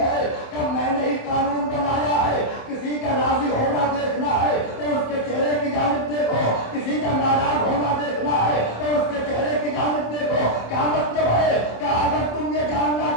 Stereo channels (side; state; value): right; late; 27 ms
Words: کب میں نے ہی قانون بنایا ہے. کسی کا راضی ہونا دیکھنا ہے تو اس کے چہرے کی جانب دیکھو, کسی کا ناراض ہونا دیکھنا ہے تو اس کے چہرے کی جانب دیکھو. کیا مطلب ہے کہ اگر تم یہ